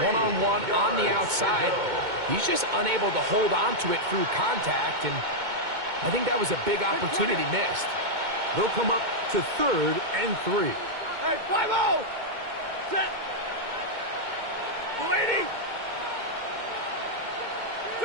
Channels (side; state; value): left; late; 2.2 ms